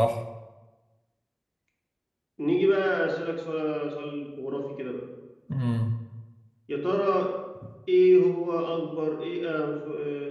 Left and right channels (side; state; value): both; identical; correlation 1.00